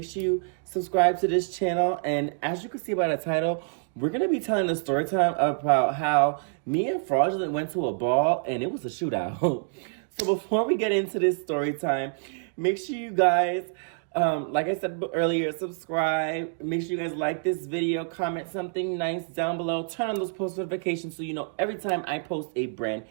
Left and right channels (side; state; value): left; silent; digital silence